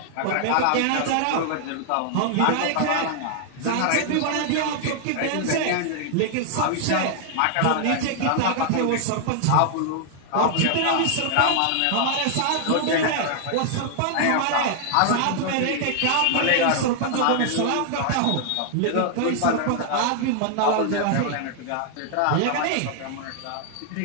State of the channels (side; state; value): both; different; correlation 0.00